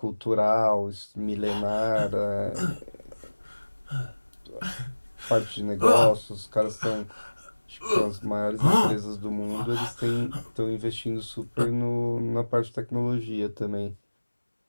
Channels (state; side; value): inverted; both; correlation -1.00